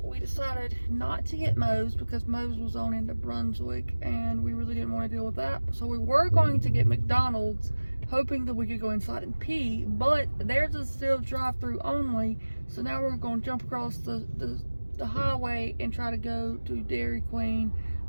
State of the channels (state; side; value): inverted; both; correlation -1.00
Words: We decided not to get Moe's because Moe's was on into Brunswick, and we really didn't want to deal with that. So we were going to get McDonald's, hoping that we could go inside and pee, but theirs is still drive-through only. So now we're going to jump across the highway and try to go to Dairy Queen.